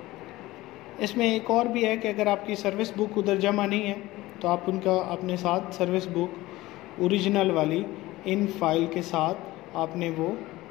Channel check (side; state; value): right; quieter; 18.3 dB